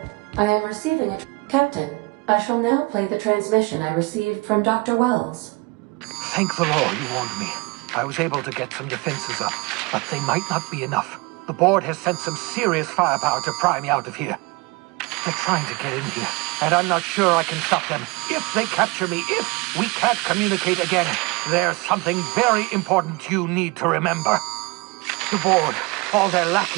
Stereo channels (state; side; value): quieter; left; 26.2 dB